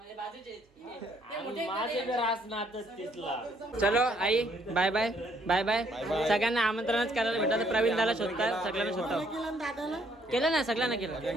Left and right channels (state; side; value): normal; both; correlation 0.67